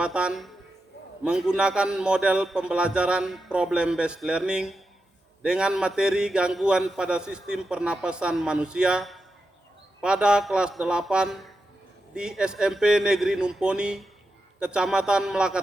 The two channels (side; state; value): both; normal; correlation 0.88